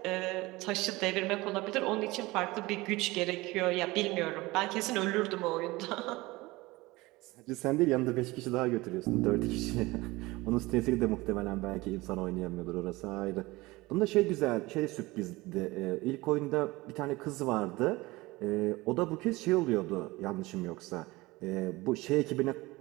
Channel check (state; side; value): quieter; left; 21.0 dB